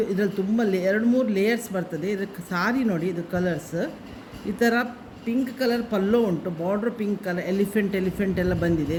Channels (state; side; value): identical; both; correlation 1.00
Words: ಇದರಲ್ಲಿ ತುಂಬ 2-3 ಲೇಯರ್ಸ್ ಬರ್ತದೆ. ಇದಕ್ಕೆ ಸಾರಿ ನೋಡಿ, ಇದು ಕಲರ್ಸ್ ಈ ಥರ ಪಿಂಕ್ ಕಲರ್ ಪಲ್ಲೋ ಉಂಟು, ಬಾರ್ಡ್ರ್ ಪಿಂಕ್ ಕಲರ್, ಎಲಿಫೆಂಟ್ ಎಲ್ಲ ಬಂದಿದೆ,